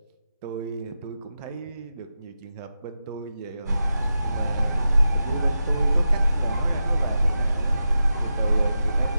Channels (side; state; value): both; inverted; correlation -0.90